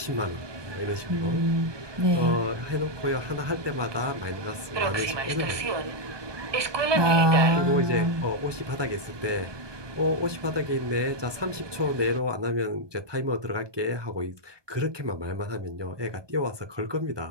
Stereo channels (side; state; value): left; late; 1.2 ms